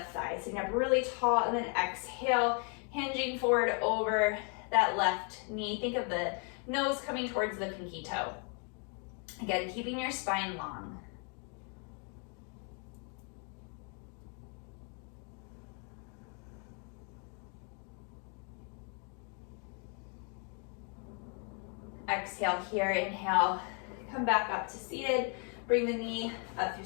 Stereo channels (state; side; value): quieter; right; 38.6 dB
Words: thigh. Sitting up really tall, and then exhale, hinging forward over that left knee. Think of the nose coming towards the pinky toe. Again, keeping your spine long. Exhale here, inhale, come back up to seated. Bring the knee up through